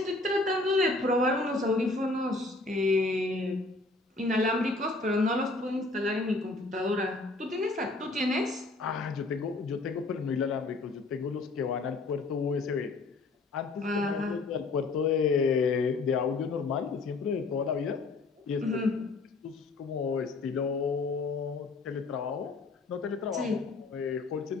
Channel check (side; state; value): right; quieter; 3.4 dB